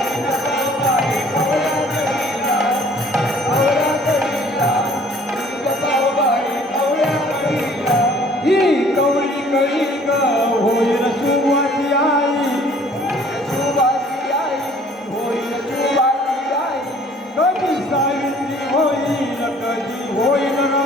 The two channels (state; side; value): normal; both; correlation 0.55